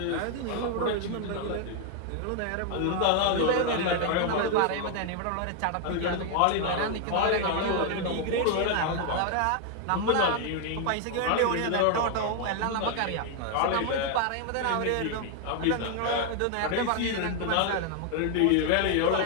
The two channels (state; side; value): different; both; correlation 0.00